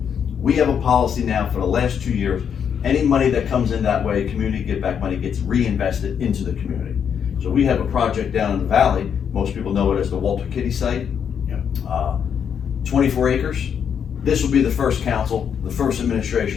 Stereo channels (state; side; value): quieter; right; 7.8 dB